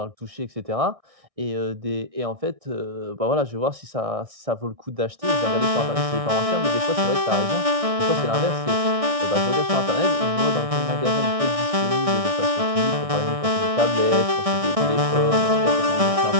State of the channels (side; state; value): left; late; 1.6 ms